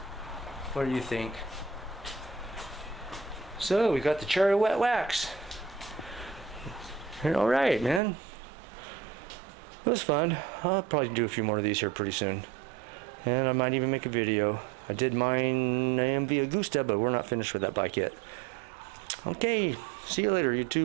What do you think? So we got the cherry wet wax. All right, man. It was fun. I'll probably do a few more of these here pretty soon. And I might even make a video. I did mine AMV Augusta, but we're not finished with that bike yet. Okay, see you later,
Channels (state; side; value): drops out; left; at 8.0 s